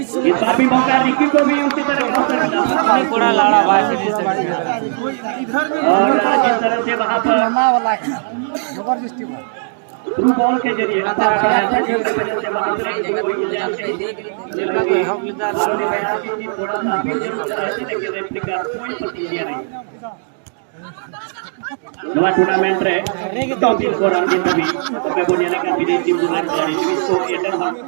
बार भी मौका रिकी को भी उसी तरह का अवसर मिला और जिस तरह से वहां पर थ्रू बॉल के जरिए पास कराया था जिसकी वजह से वहां से कोई गुंजाइश नहीं थी, थोड़ा सा अपील जरूर कर रहे थे लेकिन रेफरी का कोई प्रतिक्रिया नहीं। नवा टूर्नामेंट रे टॉप स्कोरर के तभी मैं बोलिए का विदेशी बुनान खिलाड़ी लुइस कोटिया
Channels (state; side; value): silent; left; digital silence